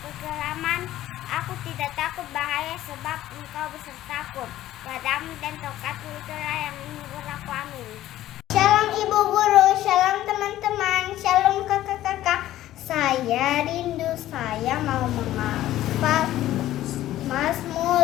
kekelaman, aku tidak takut bahaya, sebab engkau besertaku. Gadamu dan tongkatmu itulah yang menghibur aku. Amin. Shalom Ibu Guru, shalom teman-teman, shalom kakak-kakak. Saya rindu, saya mau menghafal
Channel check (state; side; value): quieter; right; 14.0 dB